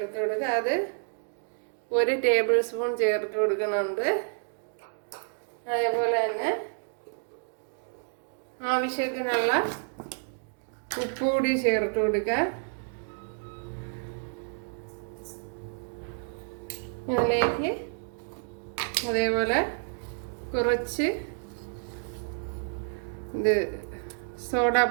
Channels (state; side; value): silent; left; digital silence